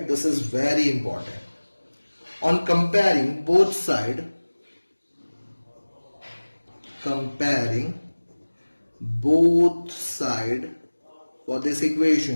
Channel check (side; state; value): both; inverted; correlation -1.00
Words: This is very important. On comparing both sides, for this